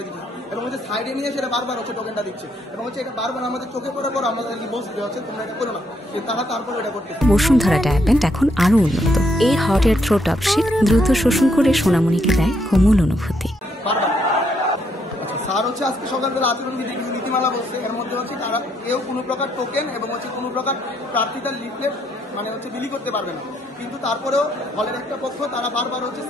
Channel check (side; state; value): both; normal; correlation 0.74